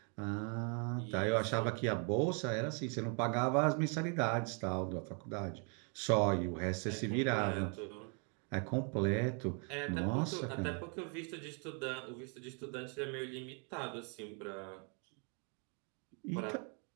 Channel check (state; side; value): quieter; left; 38.1 dB